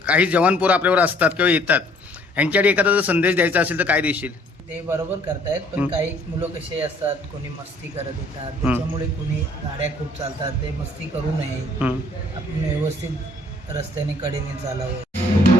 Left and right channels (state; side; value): normal; both; correlation 0.59